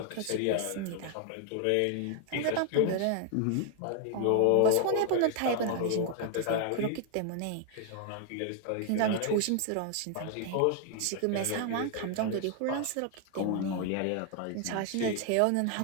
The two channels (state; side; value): different; both; correlation 0.00